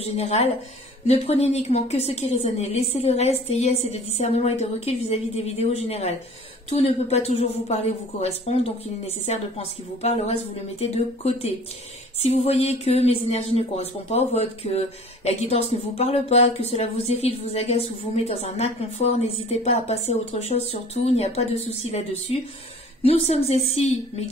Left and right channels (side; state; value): both; normal; correlation 0.47